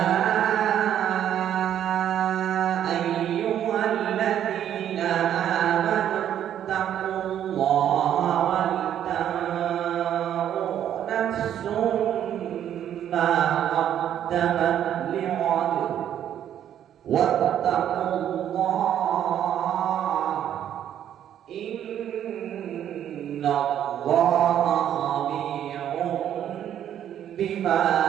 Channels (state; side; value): quieter; left; 10.3 dB